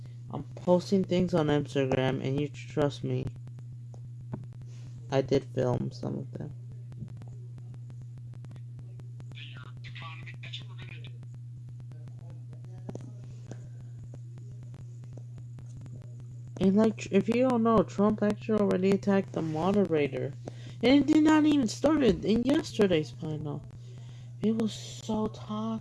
I'm posting things on Instagram and you trust me. I did film some of them. And like, if you don't know, Trump actually already attacked the moderator. And it did not even start in yesterday's final. It was so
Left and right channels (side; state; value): both; identical; correlation 1.00